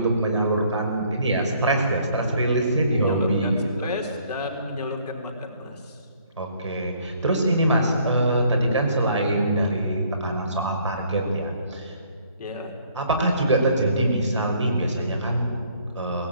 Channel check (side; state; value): both; inverted; correlation -0.62